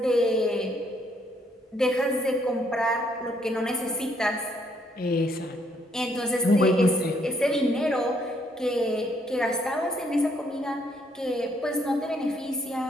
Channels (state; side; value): normal; both; correlation 0.69